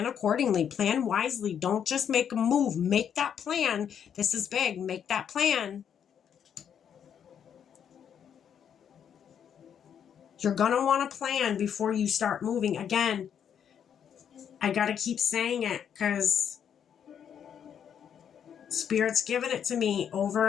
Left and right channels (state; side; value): quieter; right; 8.4 dB